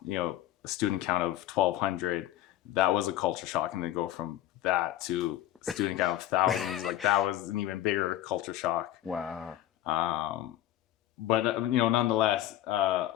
student count of 1,200. That was a culture shock, and then go from that to student count of thousands. Like that was an even bigger culture shock. Wow. But nonetheless, I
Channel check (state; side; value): quieter; right; 13.4 dB